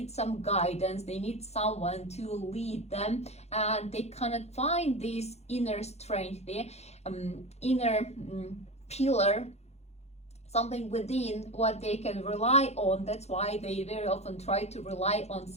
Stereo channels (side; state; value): right; late; 0.31 ms